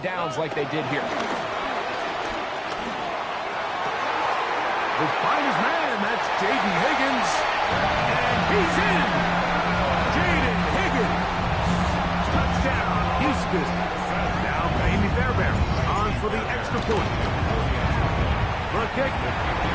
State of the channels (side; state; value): both; identical; correlation 1.00